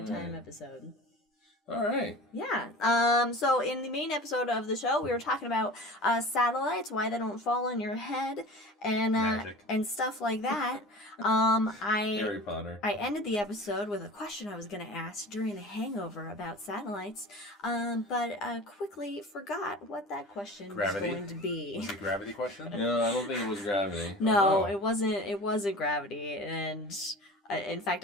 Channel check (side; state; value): both; normal; correlation 0.37